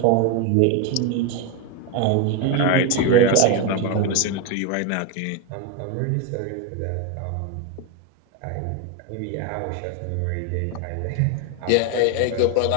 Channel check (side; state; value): both; different; correlation 0.02